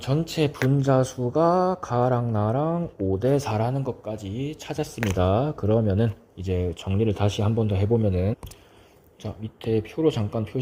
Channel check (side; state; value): both; identical; correlation 1.00